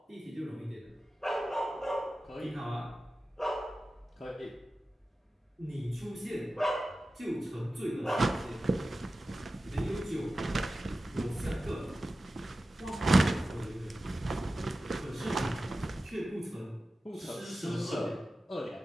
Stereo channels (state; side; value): normal; both; correlation 0.94